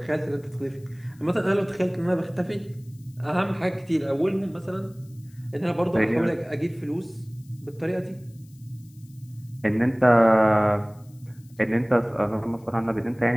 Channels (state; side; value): noise; left; hiss, 30 dB below the sound